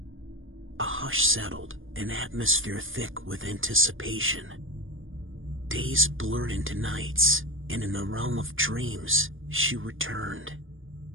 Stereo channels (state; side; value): late; left; 0.59 ms